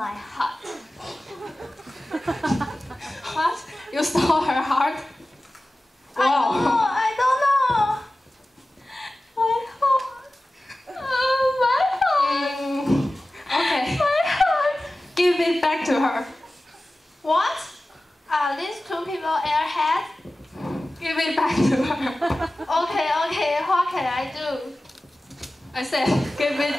heart. What? You stole her heart? Wow. I don't know. My heart. My heart. Okay. My heart. Give it back to her. What? Are these two people airheads? Give it back to her. Okay. What can I do? I said, give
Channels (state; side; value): normal; both; correlation 0.96